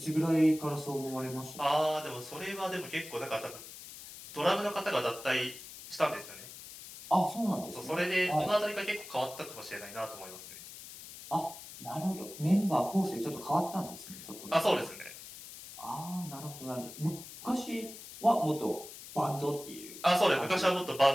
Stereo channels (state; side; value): noise; left; hiss, 14 dB below the sound